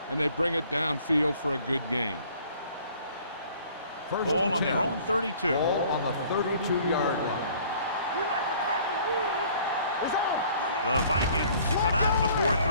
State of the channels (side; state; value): both; inverted; correlation -0.55